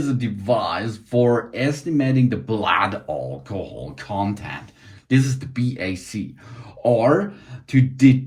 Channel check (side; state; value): both; identical; correlation 1.00